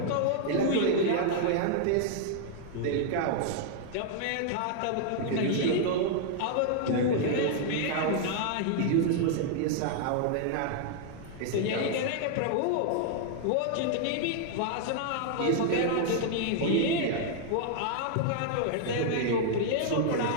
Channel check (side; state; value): both; different; correlation -0.01